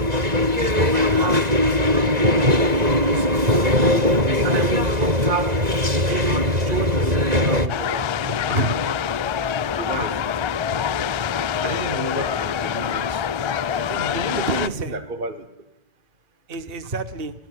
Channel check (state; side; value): late; left; 1.9 ms